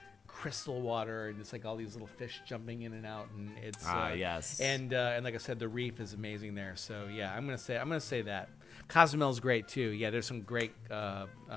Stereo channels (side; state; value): right; quieter; 5.2 dB